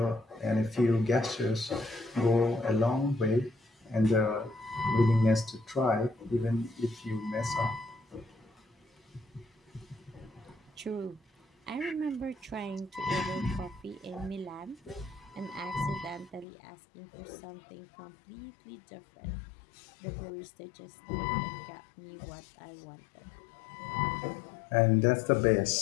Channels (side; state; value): right; drops out; at 16.4 s